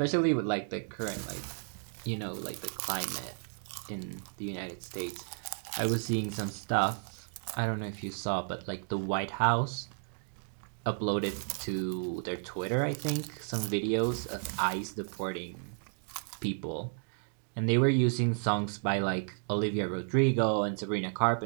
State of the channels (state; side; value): silent; left; 56 dB below the other